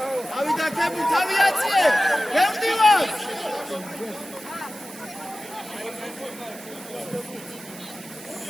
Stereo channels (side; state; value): right; noise; hiss, 16 dB below the sound